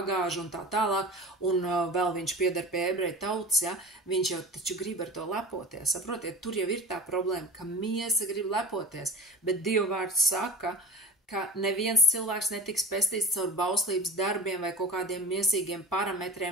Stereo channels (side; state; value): both; normal; correlation 0.33